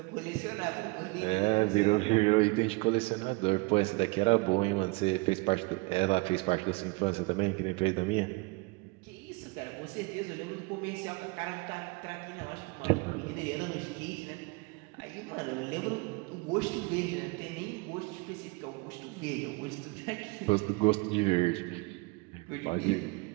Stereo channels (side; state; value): left; quieter; 26.6 dB